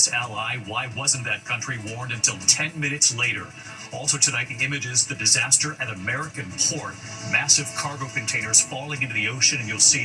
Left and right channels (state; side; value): identical; both; correlation 1.00